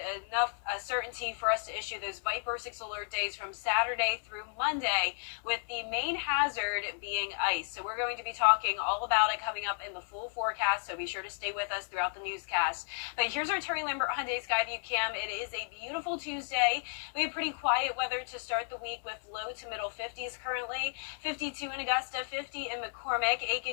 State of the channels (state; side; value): silent; right; 56 dB below the other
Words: enough certainty for us to issue those Viper 6 alert days from Saturday through Monday, with the main hazard being ice. So we're going to be talking all about it coming up in the full forecast, so be sure to stay with us throughout the newscast. But here's our Terry Lambert Hyundai Skyview cam. It is a beautiful Tuesday. We have pretty quiet weather to start the week with low to middle 50s currently. 52 in Augusta, 50 in McCormick.